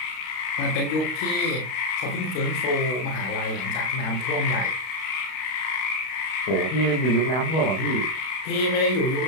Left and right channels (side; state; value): right; late; 32 ms